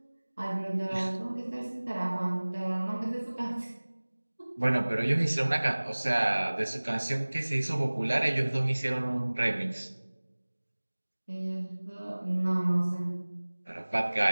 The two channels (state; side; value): inverted; both; correlation -1.00